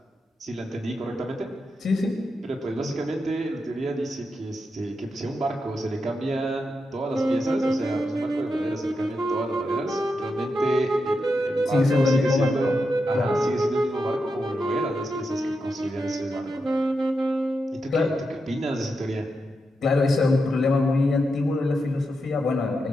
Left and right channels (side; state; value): both; normal; correlation 0.86